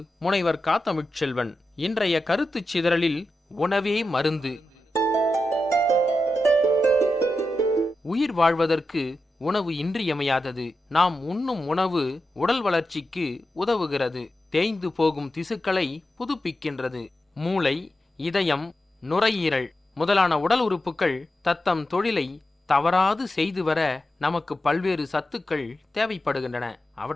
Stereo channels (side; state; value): both; normal; correlation 0.90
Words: முனைவர் காத்தமிழ்ச்செல்வன். இன்றைய கருத்துச் சிதறலில் உணவே மருந்து. உயிர் வாழ்வதற்கு உணவு இன்றியமையாதது. நாம் உண்ணும் உணவு உடல் வளர்ச்சிக்கு உதவுகிறது. தேய்ந்து போகும் திசுக்களை புதுப்பிக்கின்றது. மூளை, இதயம், நுரையீரல் முதலான உடல் உறுப்புகள் தத்தம் தொழிலை தவறாது செய்து வர நமக்கு பல்வேறு சத்துக்கள் தேவைப்படுகின்றன.